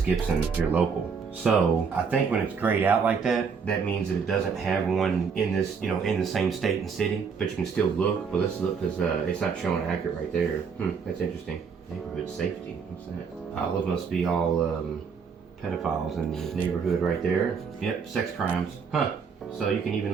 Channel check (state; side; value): quieter; left; 5.9 dB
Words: Gibson. You're local. So I think when it's grayed out like that, that means that it doesn't have one in this, in the same state and city. But you can still look. But let's look because it's not showing accurate right there. That's interesting. Neighborhood safety. What's that? Olive must be all pedophiles in the neighborhood right there. Yep, sex crimes. Huh. So you can even